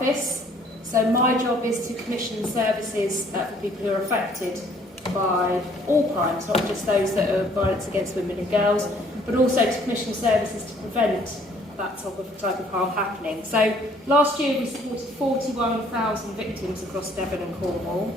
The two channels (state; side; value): normal; both; correlation 0.60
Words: So my job is to commission services for people who are affected by all crimes, not just those that are violence against women and girls, but also to commission services to prevent that type of harm happening. So last year we supported 41,000 victims across Devon and Cornwall,